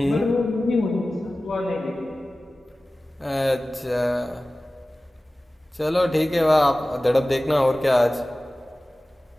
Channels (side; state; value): both; normal; correlation 0.97